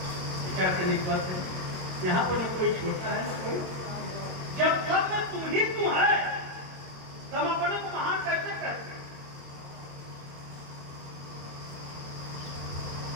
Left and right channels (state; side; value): late; left; 22 ms